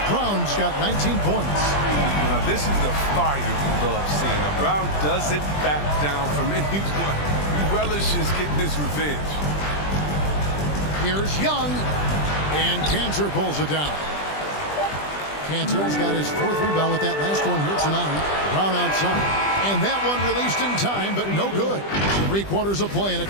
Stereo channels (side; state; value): right; late; 20 ms